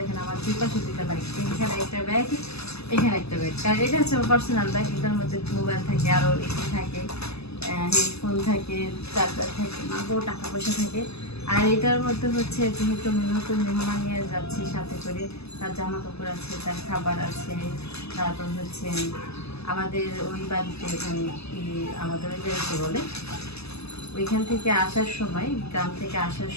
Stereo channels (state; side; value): late; right; 0.79 ms